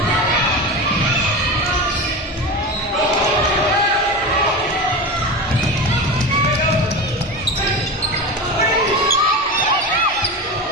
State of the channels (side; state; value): both; normal; correlation 0.25